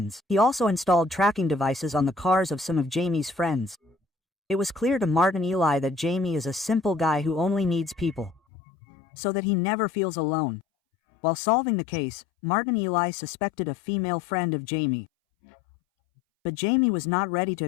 He also installed tracking devices on the cars of some of Jamie's friends. It was clear to Martin Eli that Jamie is a simple guy who only needs people, so that he never feels alone. While solving the case, Martin Eli suspected a female friend of Jamie. But Jamie was not ready to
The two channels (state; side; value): drops out; right; at 8.4 s